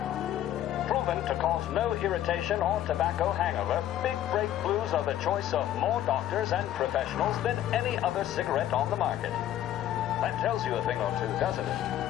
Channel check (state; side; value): quieter; right; 12.1 dB